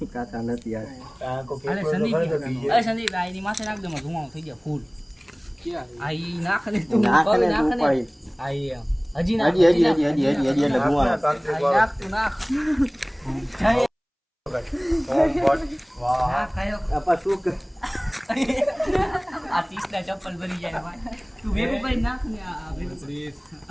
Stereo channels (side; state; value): both; identical; correlation 1.00